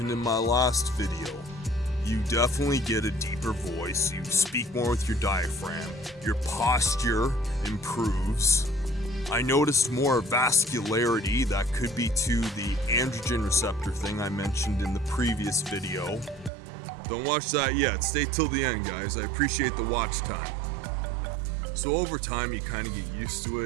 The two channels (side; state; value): left; drops out; at 16.5 s